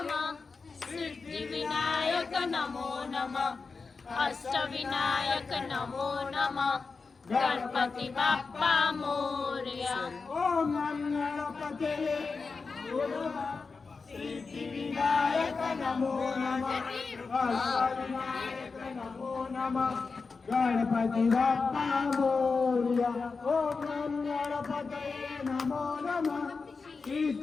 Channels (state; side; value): quieter; right; 4.5 dB